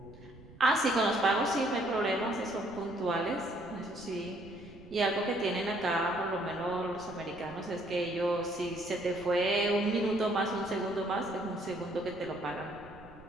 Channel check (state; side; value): noise; right; rumble, 20 dB below the sound